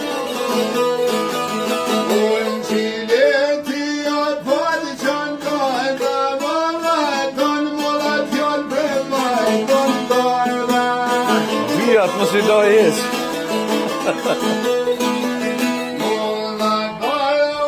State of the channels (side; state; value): both; identical; correlation 1.00